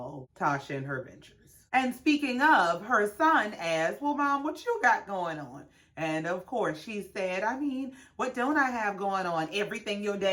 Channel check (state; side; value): identical; both; correlation 1.00